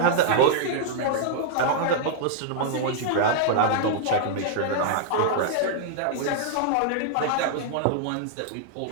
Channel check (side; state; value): both; different; correlation -0.01